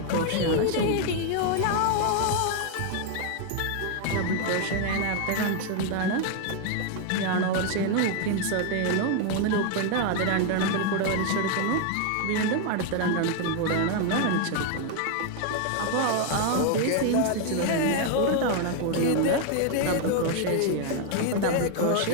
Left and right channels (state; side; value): different; both; correlation 0.01